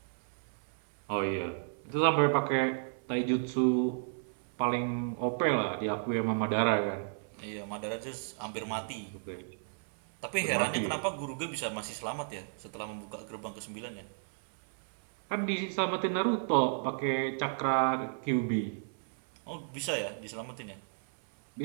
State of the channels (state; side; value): silent; left; 56 dB below the other